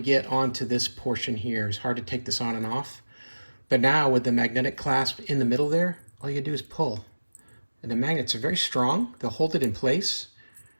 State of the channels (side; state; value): both; inverted; correlation -1.00